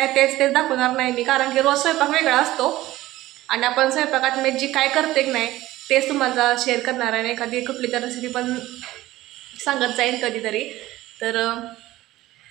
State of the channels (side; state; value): left; quieter; 16.4 dB